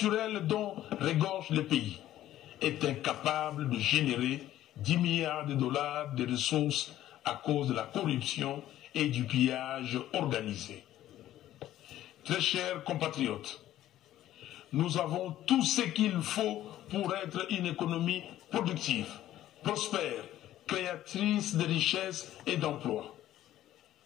dont regorge le pays, est incapable de générer 10 milliards de dollars de ressources à cause de la corruption et du pillage organisé. Très chers compatriotes, nous avons tout ce qu'il faut pour être une économie productive, prospère, créatrice de richesses et d'emplois.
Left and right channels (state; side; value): quieter; right; 13.3 dB